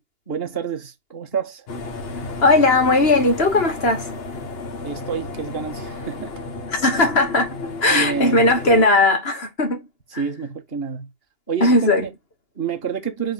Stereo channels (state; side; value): late; right; 2.8 ms